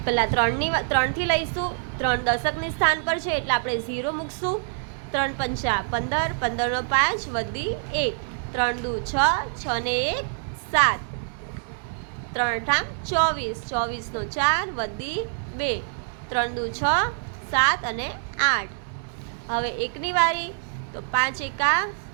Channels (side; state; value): left; silent; digital silence